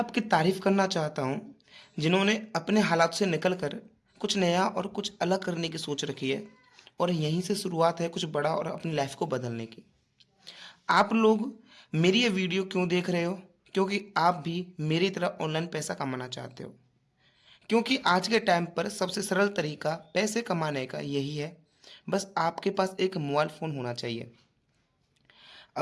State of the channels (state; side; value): identical; both; correlation 1.00